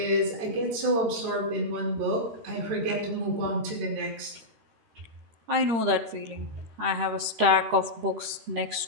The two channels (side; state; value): left; late; 13 ms